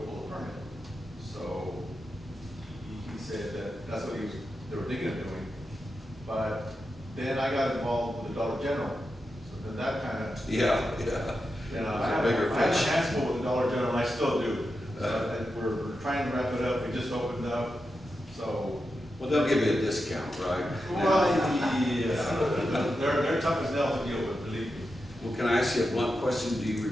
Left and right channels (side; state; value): both; normal; correlation 0.89